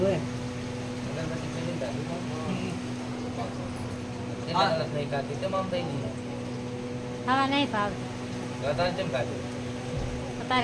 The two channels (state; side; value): identical; both; correlation 1.00